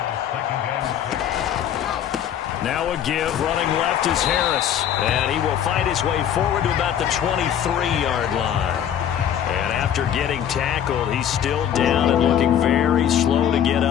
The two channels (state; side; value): quieter; right; 9.6 dB